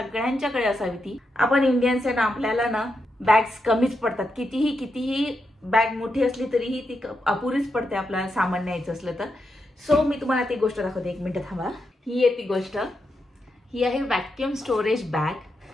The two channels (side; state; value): both; normal; correlation 0.84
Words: असावी ती. आपण इंडियन्स आहे ना, आपल्याला ना बॅग्स कमीच पडतात. कितीही बॅग मोठी असली तरीही ती अपुरीच पडते आपल्याला सामान न्यायचं असलं तर. सो मी तुम्हाला ती गोष्ट दाखवते. एक मिनिट थांबा. ही आहे ती गोष्ट. ही आहे vacuum storage bag.